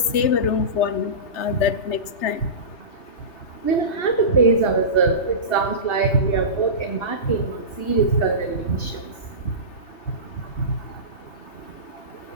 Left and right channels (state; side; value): late; right; 3.3 ms